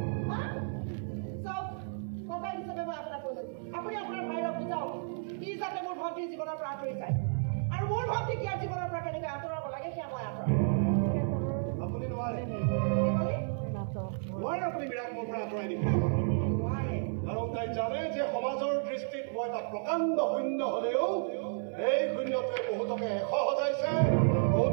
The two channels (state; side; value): silent; left; digital silence